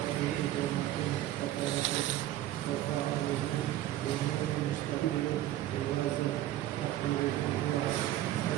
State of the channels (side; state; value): left; quieter; 13.8 dB